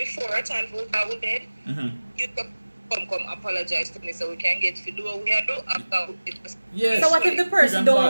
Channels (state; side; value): inverted; both; correlation -1.00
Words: a time for go to bed, you come apologize to me so we can get to do what we are doing after it. Yes. So what if the person You can